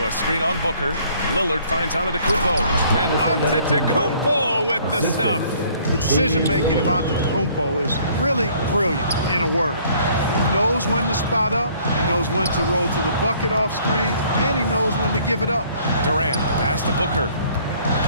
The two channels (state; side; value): inverted; both; correlation -0.59